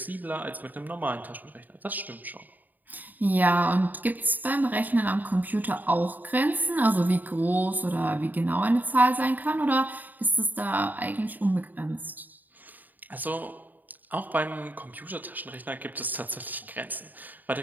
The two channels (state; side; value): late; left; 0.086 ms